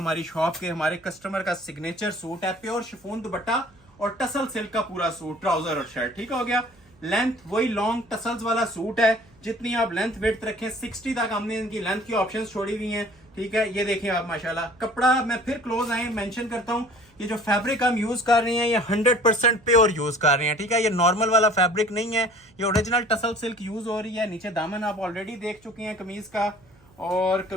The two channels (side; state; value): right; noise; hum, 30 dB below the sound